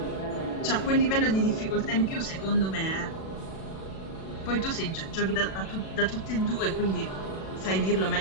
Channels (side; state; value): right; late; 37 ms